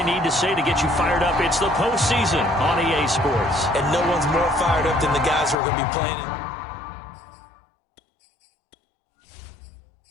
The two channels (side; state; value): right; drops out; at 5.6 s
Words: need to say to get you fired up. It's the postseason on EA Sports. And no one's more fired up than the guys who are going to be playing it.